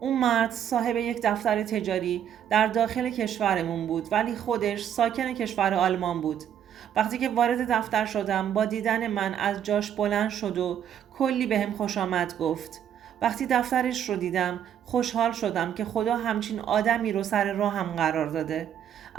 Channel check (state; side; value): quieter; left; 9.6 dB